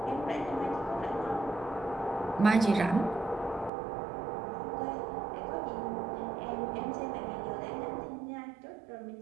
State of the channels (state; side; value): drops out; left; at 3.7 s